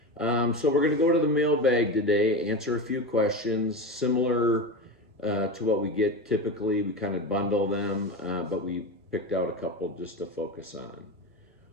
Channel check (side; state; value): both; normal; correlation 0.22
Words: So we're going to go to the mailbag today, answer a few questions similar to what we get typically. We kind of bundle them, but we picked out a couple just to focus on.